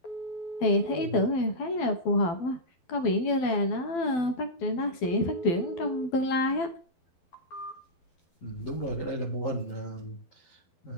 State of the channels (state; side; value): late; right; 12 ms